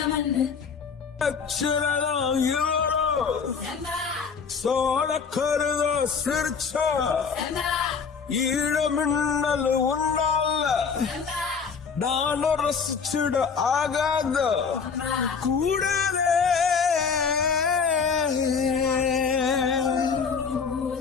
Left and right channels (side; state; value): right; quieter; 5.8 dB